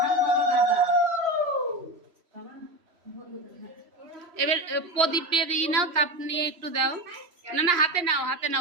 এবার প্রদীপে দিয়ে নাও, তাপ নিয়ে একটু দাও। না না, হাতে নাও, হাতে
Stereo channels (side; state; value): left; late; 3.1 ms